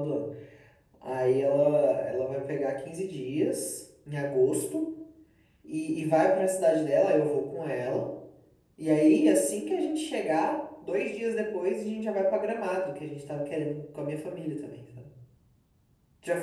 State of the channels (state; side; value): identical; both; correlation 1.00